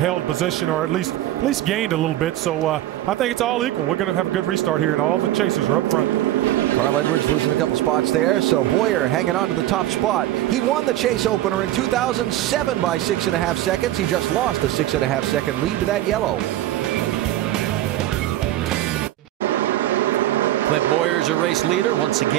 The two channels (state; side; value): quieter; left; 14.2 dB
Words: position or at least gained a little bit. So I think it's all equal. We're going to have a good restart here, and all the chasers are up front. Carl Edwards losing a couple spots there, so Boyer hanging on to the top spot. He won the chase opener in 2007 by 6.5 seconds. He just lost a 6.5 second lead to that yellow. Clint Boyer's a race leader once